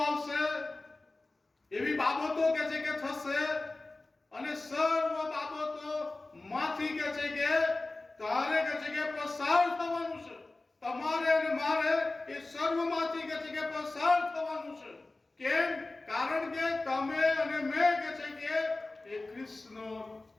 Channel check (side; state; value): right; quieter; 3.1 dB